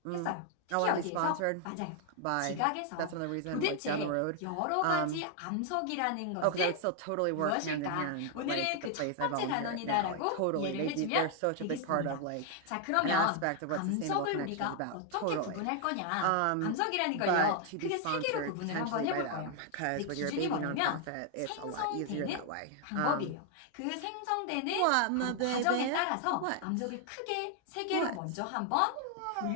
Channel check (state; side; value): different; both; correlation 0.00